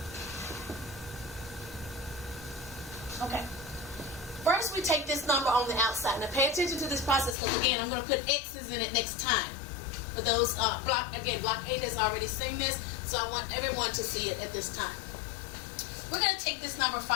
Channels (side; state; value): right; drops out; at 7.4 s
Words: Okay. First, we take this number on the outside. Now, pay attention to this process because, again, I'm going to put X's in it next time. For those, block 8 has already seen this, so I want everyone to see it at this time. We're going to take this number